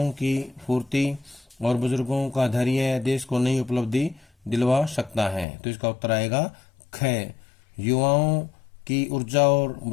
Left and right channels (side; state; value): right; drops out; at 5.5 s